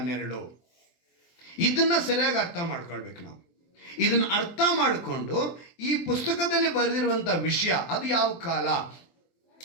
ನೆರಳು, ಇದನ್ನು ಸರಿಯಾಗಿ ಅರ್ಥ ಮಾಡ್ಕೊಳ್ಬೇಕು ನಾವು. ಇದನ್ನು ಅರ್ಥ ಮಾಡಿಕೊಂಡು ಈ ಪುಸ್ತಕದಲ್ಲಿ ಬರೆದಿರುವಂಥ ವಿಷಯ, ಅದು ಯಾವ ಕಾಲ,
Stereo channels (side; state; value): right; late; 24 ms